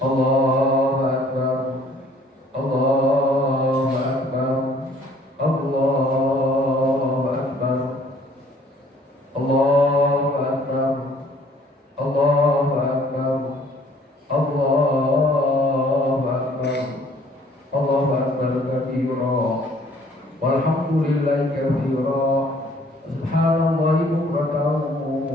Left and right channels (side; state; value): both; normal; correlation 0.58